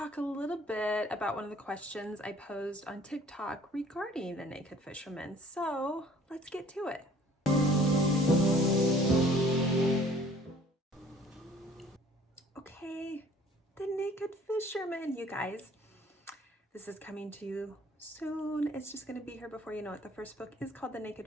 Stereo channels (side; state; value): both; normal; correlation 0.54